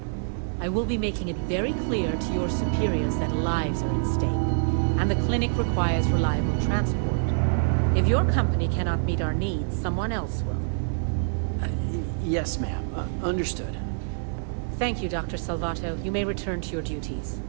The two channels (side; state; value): left; silent; digital silence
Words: I will be making it very clear to your superiors that lives are at stake, and the clinic requires reliable transport. If your company cannot meet our needs, someone else will. Yes, ma'am. Understood. Thank you, Dr. Salvato. You may return to your duties.